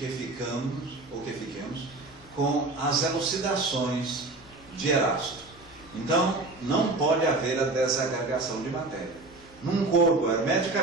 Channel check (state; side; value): quieter; left; 3.1 dB